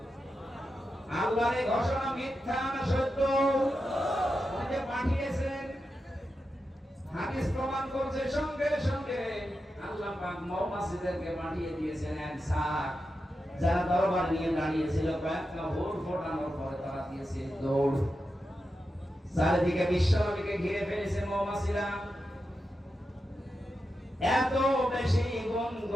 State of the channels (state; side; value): normal; both; correlation 0.89